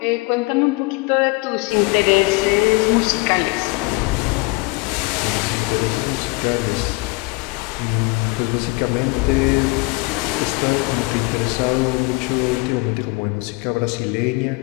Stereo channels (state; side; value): quieter; right; 25.9 dB